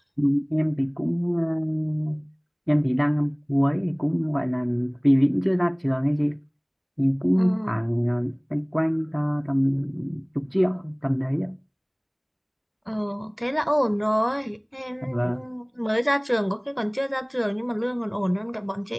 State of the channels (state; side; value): identical; both; correlation 1.00